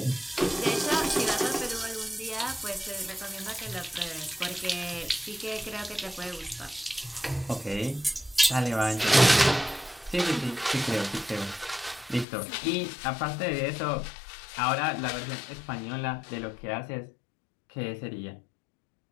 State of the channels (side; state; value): right; drops out; at 12.2 s